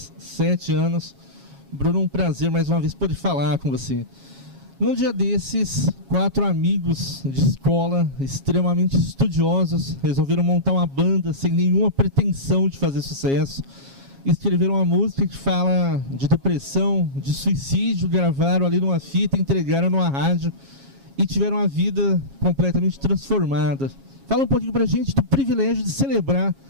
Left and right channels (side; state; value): left; late; 7.3 ms